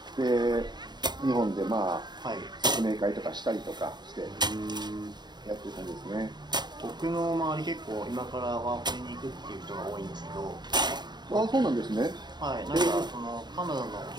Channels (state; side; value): late; left; 0.21 ms